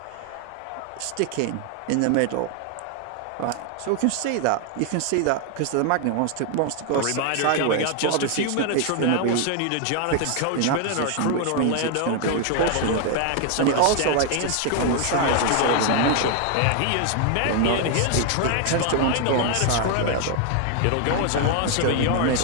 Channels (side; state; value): both; different; correlation 0.00